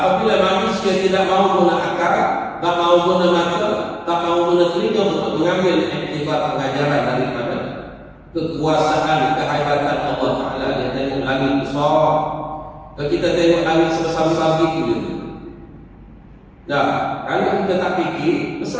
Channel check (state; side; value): identical; both; correlation 1.00